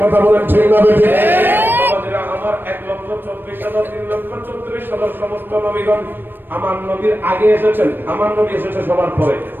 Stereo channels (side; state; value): left; late; 0.095 ms